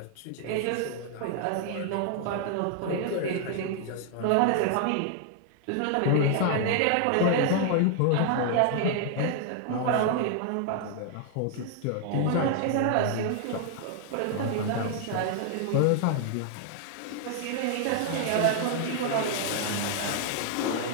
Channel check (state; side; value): different; both; correlation 0.00